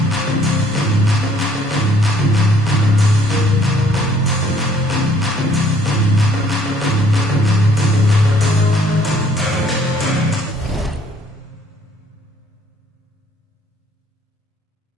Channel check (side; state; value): both; normal; correlation 0.61